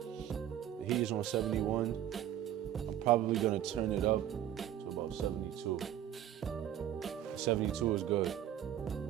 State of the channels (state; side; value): quieter; left; 11.2 dB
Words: heat is on 71. I'm probably gonna turn it up to about 72. 72 is good.